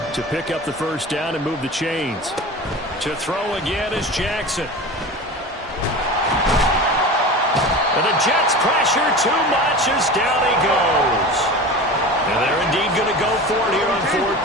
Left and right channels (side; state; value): both; normal; correlation 0.32